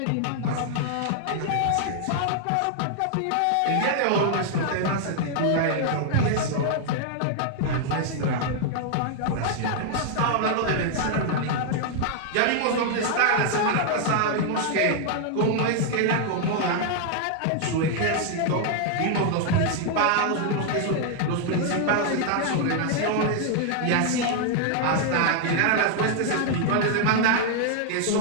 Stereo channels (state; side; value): different; both; correlation 0.00